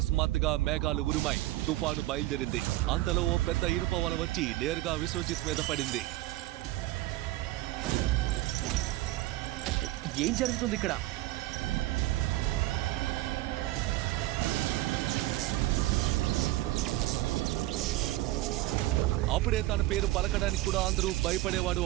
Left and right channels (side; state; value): left; quieter; 17.3 dB